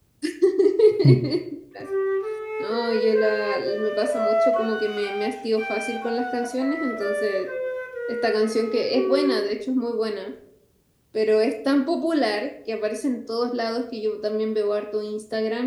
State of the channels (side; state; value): both; identical; correlation 1.00